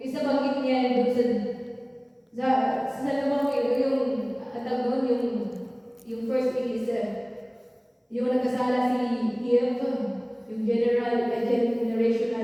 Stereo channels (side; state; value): both; identical; correlation 1.00